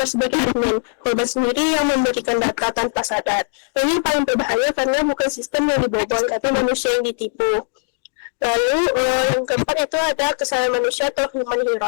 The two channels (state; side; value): silent; right; digital silence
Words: sebagai admin. Korban sendiri yang memberikan data tanpa sadar. Ini paling berbahaya karena bukan sistem yang dibobol, tapi manusia yang ditipu. Lalu yang keempat itu ada kesalahan manusia atau human